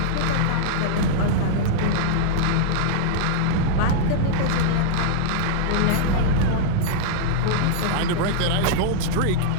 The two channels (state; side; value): different; both; correlation -0.02